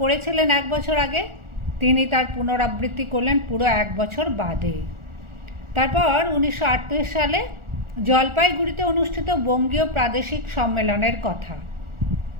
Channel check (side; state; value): left; late; 1.4 ms